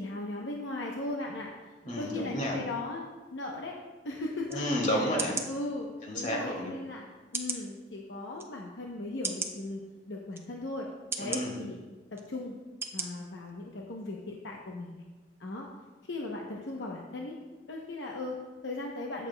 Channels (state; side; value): normal; both; correlation 0.33